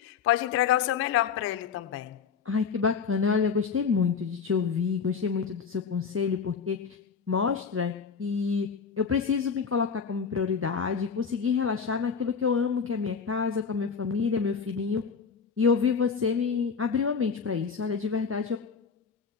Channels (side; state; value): right; quieter; 6.0 dB